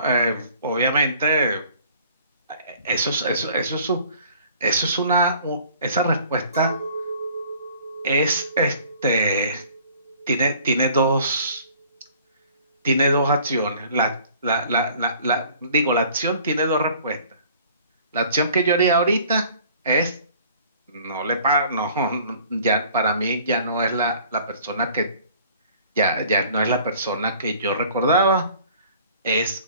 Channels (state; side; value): inverted; both; correlation -0.53